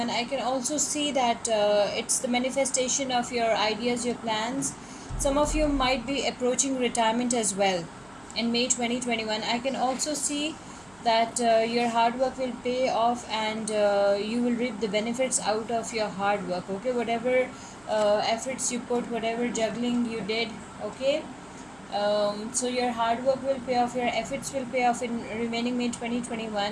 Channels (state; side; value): noise; right; hum, 28 dB below the sound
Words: I can also see that it's the manifestation of your ideas, your plans. Some of you might be approaching retirement as well in May 2021. I can also see that your hard work will pay off, and you will reap the benefits out of your hard work. Okay, whatever efforts you put, whatever juggling you did, okay, so your hard work will pay off, your efforts will pay off in remaining May